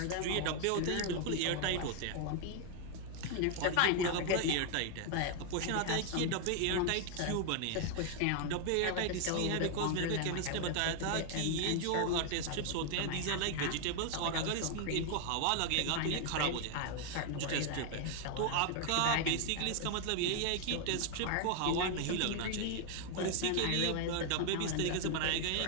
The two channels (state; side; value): different; both; correlation 0.00